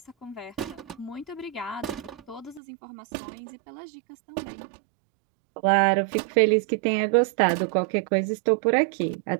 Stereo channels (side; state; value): left; drops out; at 2.6 s